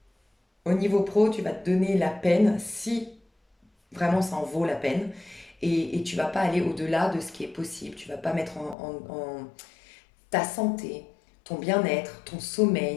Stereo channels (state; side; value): drops out; right; at 8.8 s